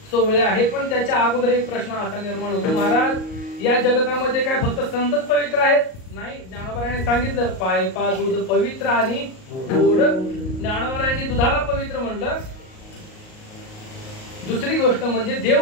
सोवळे आहेत. पण त्याच्या अगोदर एक प्रश्न असा निर्माण होतो, महाराज या जगतामध्ये काय फक्त संतच पवित्र आहेत? नाही, ज्ञानोबारायांनी सांगितलं पाय पा दूध पवित्र आणि गोड. ज्ञानोबारायांनी दुधाला पवित्र म्हणलं. दुसरी गोष्ट म्हणजे देव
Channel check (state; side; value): late; right; 38 ms